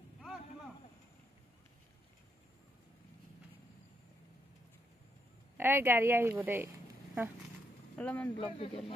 এই গাড়ী আহিব দেই অলপমান ব্লগ ভিডিঅ'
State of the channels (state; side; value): normal; both; correlation 0.78